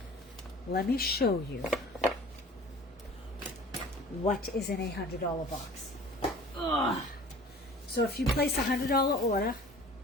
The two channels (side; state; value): both; normal; correlation 0.45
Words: let me show you what is in a $100 box. Ugh. So if you place a $100 order,